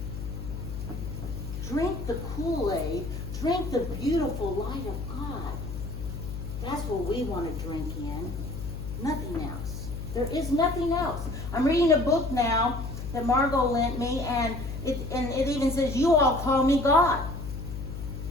Drink the Kool-Aid. Drink the beautiful light of God. That's what we want to drink in. Nothing else. There is nothing else. I'm reading a book now that Margot lent me, and it even says, you all call me God.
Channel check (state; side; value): noise; left; hum, 7 dB below the sound